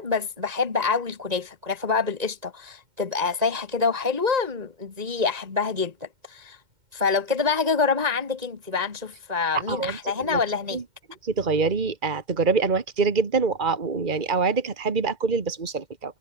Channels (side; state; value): left; late; 1.9 ms